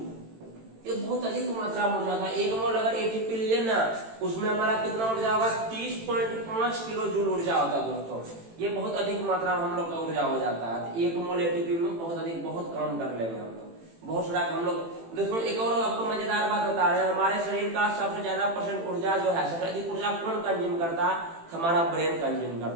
ये बहुत अधिक मात्रा में ऊर्जा था। 1 मोल अगर एटीपी लिए ना, उसमें हमारा कितना ऊर्जा होगा, 30.5 किलो जूल ऊर्जा होगा दोस्तों। ये बहुत अधिक मात्रा में हम लोग का ऊर्जा हो जाता है। 1 मोल एटीपी में बहुत अधिक, बहुत काम कर लेंगे हम लोग, बहुत सारा हम लोग। दोस्तों एक और आपको मजेदार बात बता रहे हैं, हमारे शरीर का सबसे ज्यादा % ऊर्जा जो है, सबसे अधिक ऊर्जा कौन कंज्यूम करता है, हमारा ब्रेन कंज्यूम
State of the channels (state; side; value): late; left; 18 ms